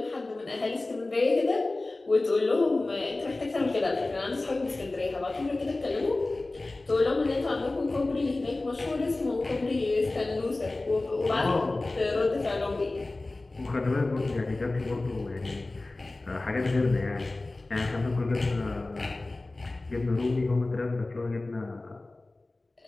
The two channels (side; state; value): right; quieter; 3.0 dB